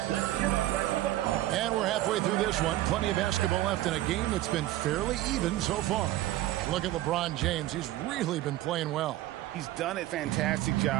And we're halfway through this one. Plenty of basketball left in a game that's been fairly even so far. Look at LeBron James. He's really been playing well. He's done a fantastic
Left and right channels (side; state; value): left; quieter; 15.3 dB